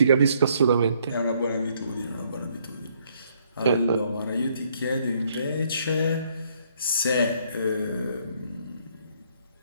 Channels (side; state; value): both; inverted; correlation -0.68